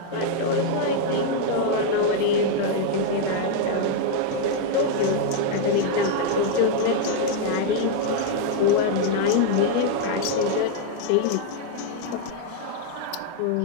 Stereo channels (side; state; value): both; different; correlation 0.00